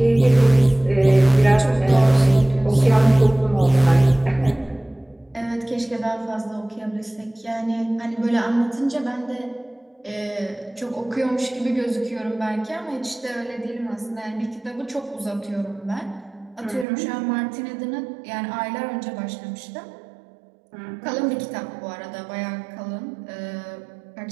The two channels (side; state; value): left; drops out; at 16.9 s